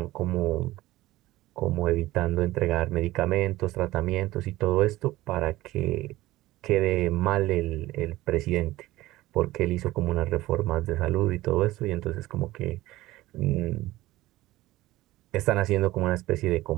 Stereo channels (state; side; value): quieter; left; 17.4 dB